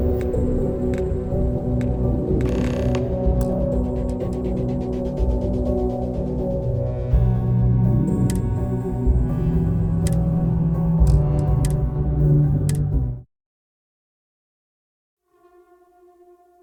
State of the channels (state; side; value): identical; both; correlation 1.00